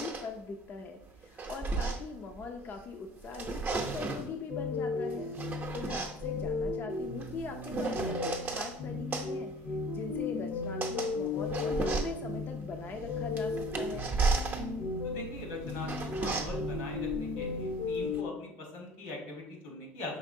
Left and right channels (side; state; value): both; normal; correlation 0.48